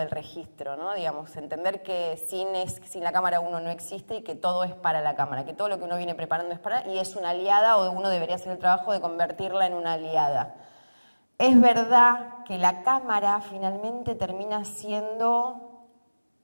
registro, ¿no? Digamos, entender que sin la cámara uno no existe y que todo es para la cámara, que todo lo que uno viene preparando es para, y es una aliada o uno debería hacer el trabajo de convertirla en una aliada. Es verdad que la cámara finalmente termina siendo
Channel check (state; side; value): inverted; both; correlation -1.00